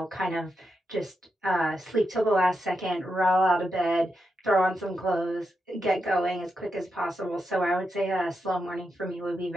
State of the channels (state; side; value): normal; both; correlation 0.85